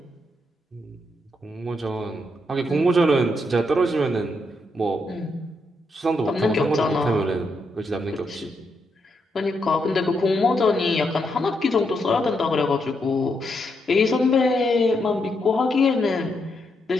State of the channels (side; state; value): both; normal; correlation 0.80